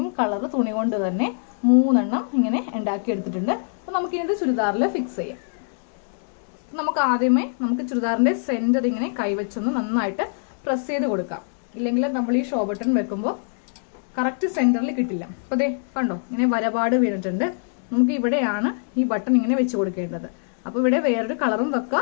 കളർ തുണി കൊണ്ട് തന്നെ 3 ഇങ്ങനെ ഉണ്ടാക്കിയെടുത്തിട്ടുണ്ട്. അപ്പം നമുക്കിത് ചുരിദാറിൽ ഫിക്സ് ചെയ്യാം. നമുക്ക് ആദ്യമേ ചുരിദാറിന്റെ സെന്റർ ഇങ്ങനെ കൈവച്ചൊന്ന് നന്നായിട്ട് പ്രസ് ചെയ്ത് കൊടുക്കാം. ഇല്ലെങ്കിൽ നമ്മൾ ഈ ഷോ ബട്ടൺ വെക്കുമ്പോൾ കറക്റ്റ് സെന്ററിൽ കിട്ടില്ല. അപ്പോൾ ദേ കണ്ടോ, ഇങ്ങനെ വരപാട് വീണിട്ടുണ്ട്. നമുക്ക് ഇവിടെയാണ് ഈ ബട്ടൺ ഇങ്ങനെ വെച്ച് കൊടുക്കേണ്ടത്. അപ്പോൾ ഇവിടെ വേറൊരു കളറും വെക്കുക.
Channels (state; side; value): silent; right; digital silence